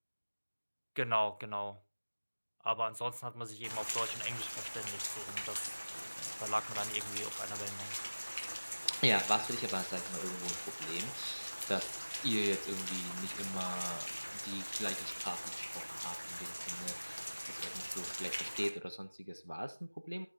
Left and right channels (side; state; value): both; inverted; correlation -1.00